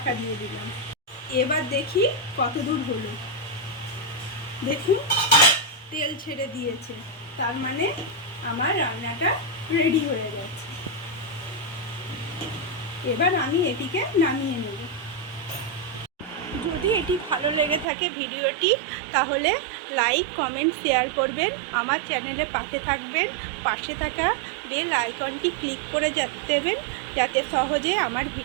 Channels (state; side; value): drops out; left; at 17.9 s